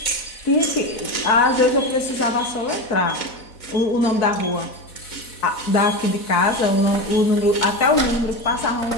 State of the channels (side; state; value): right; late; 4.1 ms